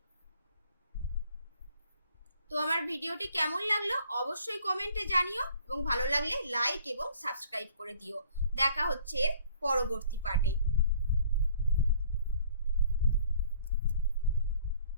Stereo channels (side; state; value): both; inverted; correlation -0.57